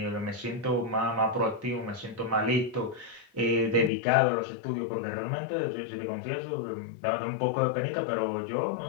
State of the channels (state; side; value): drops out; right; at 3.9 s